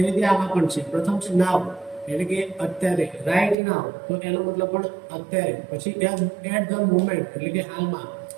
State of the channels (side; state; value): left; drops out; at 3.6 s